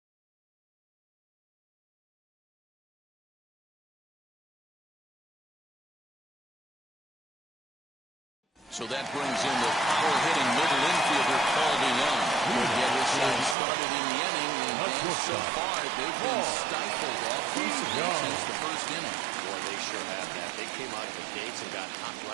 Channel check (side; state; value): left; drops out; at 13.6 s